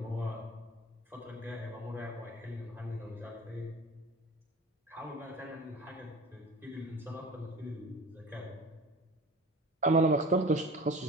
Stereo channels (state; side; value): normal; both; correlation 0.39